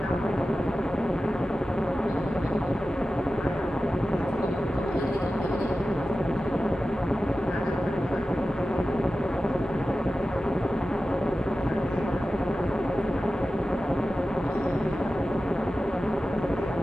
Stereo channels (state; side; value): normal; both; correlation 0.94